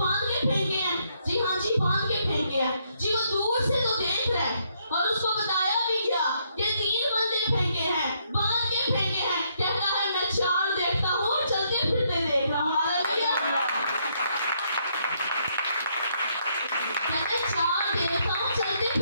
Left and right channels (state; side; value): inverted; both; correlation -0.73